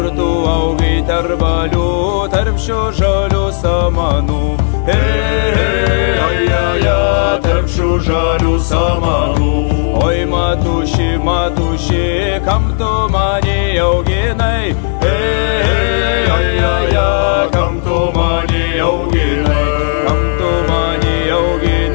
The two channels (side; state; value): right; silent; digital silence